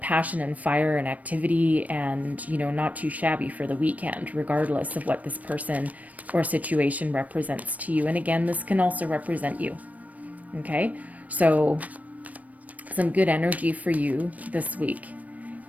passion and fire and activity and, you know, not too shabby for the weekend, regardless of what this person or situation represents to you. And again, this can also represent you. Okay, so some good energy for you this week.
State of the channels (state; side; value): late; left; 0.071 ms